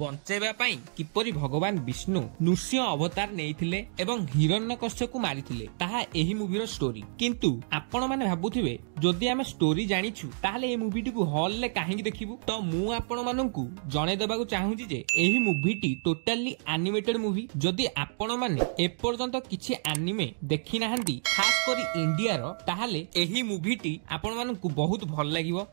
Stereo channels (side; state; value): left; silent; digital silence